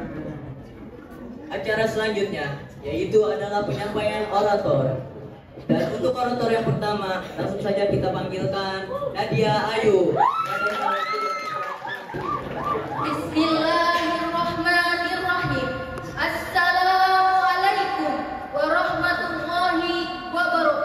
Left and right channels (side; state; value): both; identical; correlation 1.00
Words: Acara selanjutnya yaitu adalah penyampaian orator. Dan untuk orator yang pertama, langsung saja kita panggilkan Nadia Ayu. Bismillahirrahmanirrahim. Assalamualaikum warahmatullahi